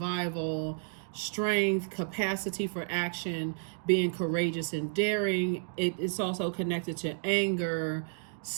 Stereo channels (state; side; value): silent; left; digital silence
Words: strength, capacity for action, being courageous and daring. It's also connected to anger,